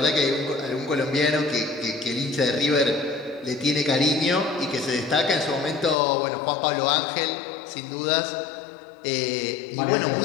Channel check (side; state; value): right; drops out; at 6.0 s